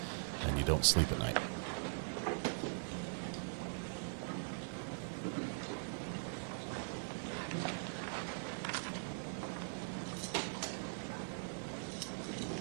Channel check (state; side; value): silent; left; digital silence